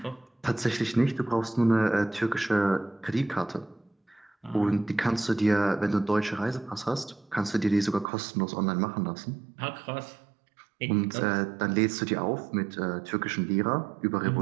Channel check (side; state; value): left; drops out; at 8.1 s